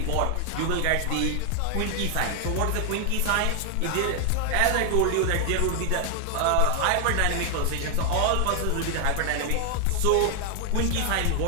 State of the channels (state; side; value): different; both; correlation 0.00